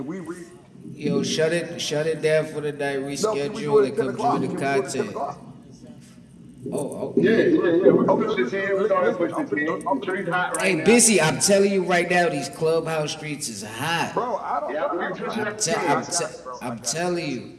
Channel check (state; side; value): identical; both; correlation 1.00